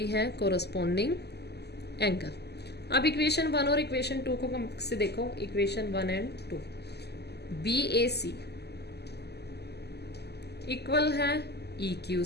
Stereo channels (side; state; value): right; late; 0.48 ms